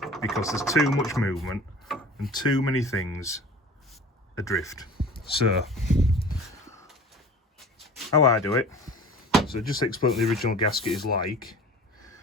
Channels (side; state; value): both; normal; correlation 0.42